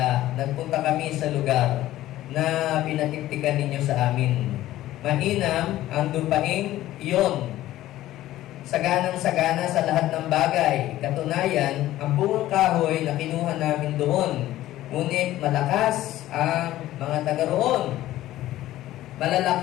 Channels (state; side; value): quieter; right; 14.7 dB